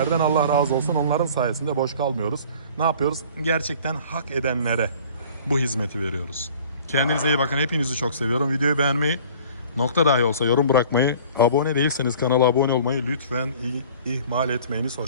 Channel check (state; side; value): inverted; both; correlation -0.48